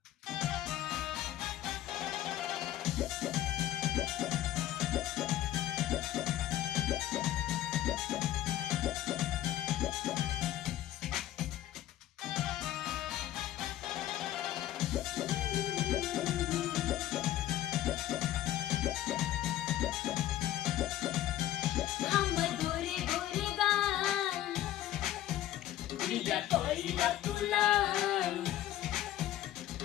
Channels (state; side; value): quieter; right; 13.2 dB